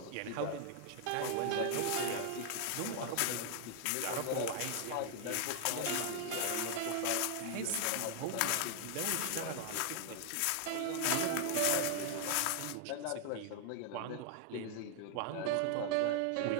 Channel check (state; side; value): different; both; correlation 0.00